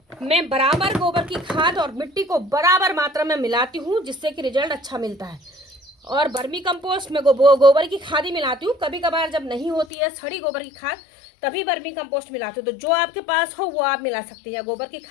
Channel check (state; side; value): drops out; right; at 9.9 s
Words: मैं बराबर गोबर की खाद और मिट्टी को बराबर मात्रा में मिलाती हूँ, जिससे कि रिजल्ट अच्छा मिलता है। और वर्मी कंपोस्ट में गोबर की खाद ही मिलाती हूँ। कभी कभार जब नहीं होती है सड़ी गोबर की खाद, तभी वर्मी कंपोस्ट मिलाती हूँ। तो जो आपके पास हो वो आप मिला सकते हैं, या गोबर की